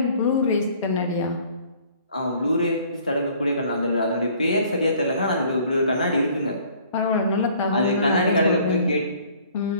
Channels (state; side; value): inverted; both; correlation -0.56